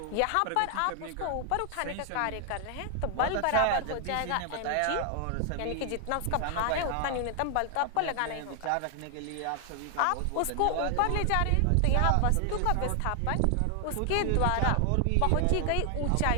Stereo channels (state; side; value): different; both; correlation 0.00